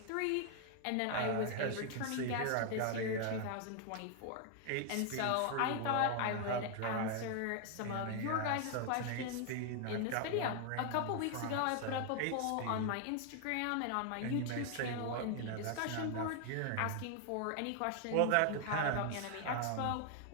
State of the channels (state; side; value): different; both; correlation 0.00